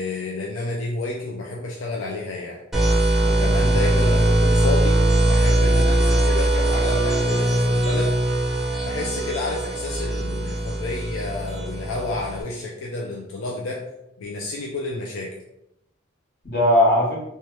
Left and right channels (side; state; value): both; normal; correlation 0.69